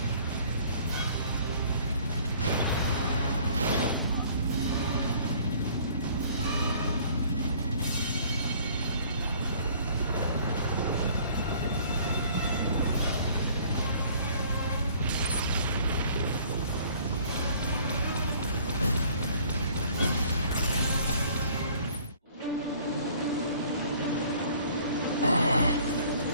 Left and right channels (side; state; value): both; inverted; correlation -0.55